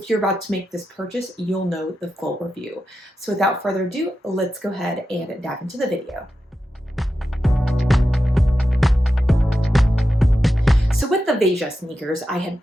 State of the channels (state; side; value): normal; both; correlation 0.90